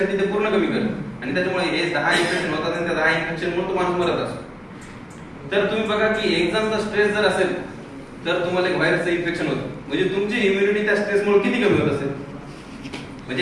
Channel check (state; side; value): identical; both; correlation 1.00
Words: ते पूर्ण कमी करत आणि त्याच्यामुळे हे 10 इन्फेक्शन होतात आणि त्या 10 इन्फेक्शनमुळे तो माणूस मरत असतो. तर तुम्ही बघा की एक्झामचा स्ट्रेस जर असेल तर तुम्हाला एक व्हायरसचं इन्फेक्शन होतं, म्हणजे तुमची इम्युनिटी त्या स्ट्रेसमुळे किती कमी होत असेल.